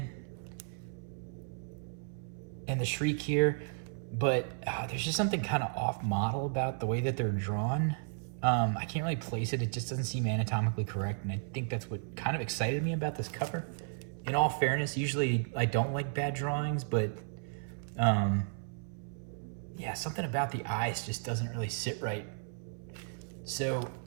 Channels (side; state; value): left; silent; 55 dB below the other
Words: and the Shriek here, but there's just something kind of off model about the way that they're drawn. I can't really place it. It just doesn't seem anatomically correct, and I think that's what kind of excited me about this cover. In all fairness, usually I don't like bad drawings, but yeah, something about the eyes just doesn't really sit right. So